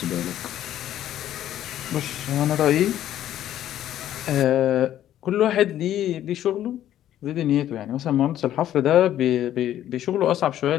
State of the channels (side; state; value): right; quieter; 11.9 dB